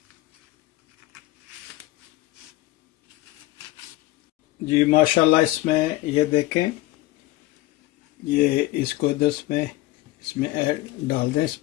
जी माशाल्लाह, इसमें ये देखें, ये इसको इधर इसमें ऐड डाल दें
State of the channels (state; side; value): quieter; right; 17.5 dB